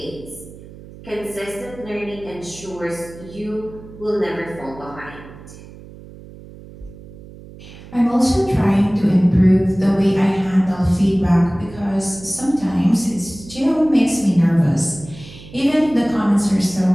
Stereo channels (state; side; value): noise; right; hum, 18 dB below the sound